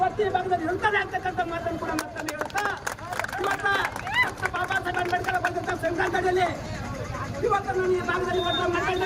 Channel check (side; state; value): both; identical; correlation 1.00